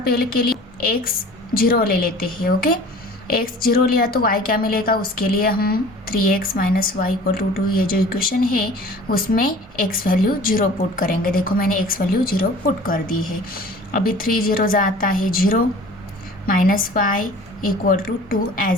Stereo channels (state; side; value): normal; both; correlation 0.45